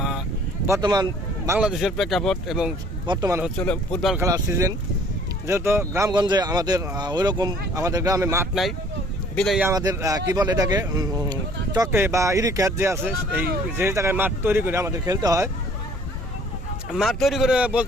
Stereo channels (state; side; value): normal; both; correlation 0.56